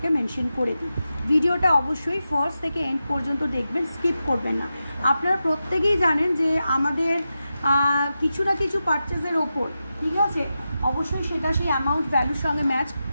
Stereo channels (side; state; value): both; inverted; correlation -0.90